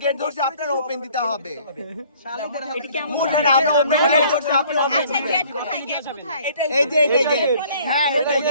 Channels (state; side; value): inverted; both; correlation -0.56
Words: গেট ধরছি আপনারা ওপেন দিতে হবে মুঠে না আমরা ওপেন গেট ধরছি আপনারা ওপেন আচ্ছা গেট কোথায় এই যে গেট হ্যাঁ এটাই